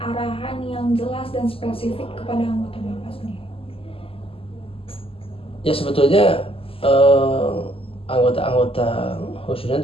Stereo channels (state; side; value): late; right; 0.27 ms